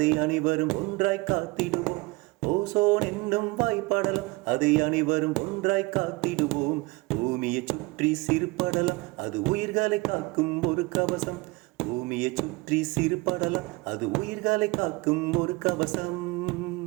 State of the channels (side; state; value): left; quieter; 24.1 dB